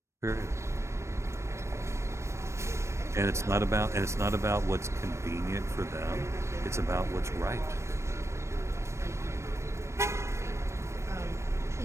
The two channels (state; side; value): late; left; 0.13 ms